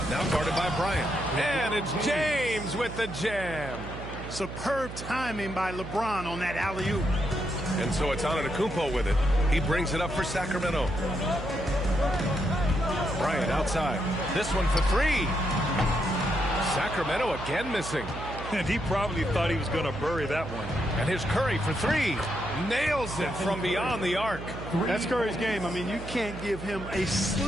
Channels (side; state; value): right; noise; hum, 10 dB below the sound